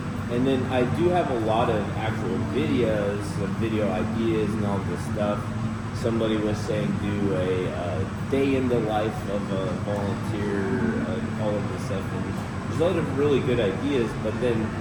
And then I do have a lot of actual videos, video ideas and all this stuff. Somebody was saying do a day in the life of a volunteer, all of this stuff. And there's a lot of really good ideas, but then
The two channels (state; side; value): identical; both; correlation 1.00